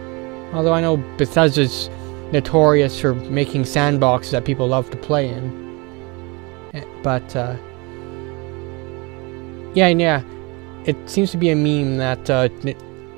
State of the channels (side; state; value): left; quieter; 27.8 dB